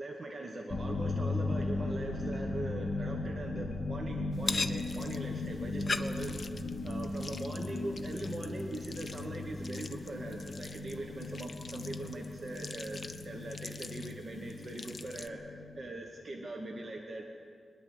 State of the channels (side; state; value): both; normal; correlation 0.87